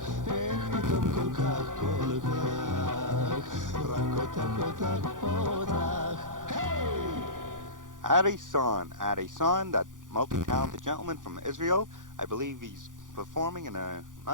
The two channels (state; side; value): late; left; 0.88 ms